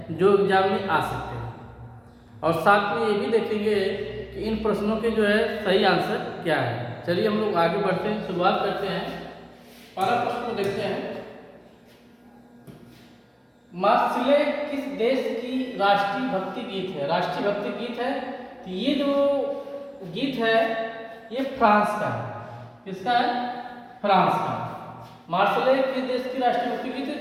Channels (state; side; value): identical; both; correlation 1.00